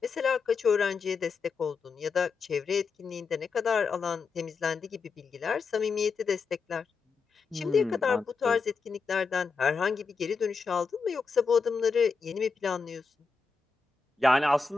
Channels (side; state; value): right; quieter; 4.9 dB